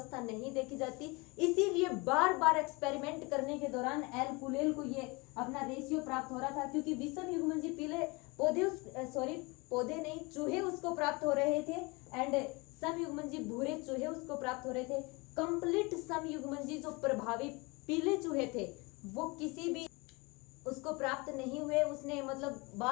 नहीं देखी जाती, इसीलिए बार बार एक्सपेरिमेंट करने के दौरान एल कुलेल को ये अपना रेशियो प्राप्त हो रहा था, क्योंकि विषम युग्मनजी पीले पौधे नहीं, चूहे उसको प्राप्त हो रहे थे, एंड समयुग्मनजी भूरे चूहे उसको प्राप्त हो रहे थे। कंप्लीट समयुग्मनजी जो प्रभावी पीले चूहे थे वो किसी भी उसको प्राप्त नहीं हुए। उसने मतलब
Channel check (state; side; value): quieter; right; 26.7 dB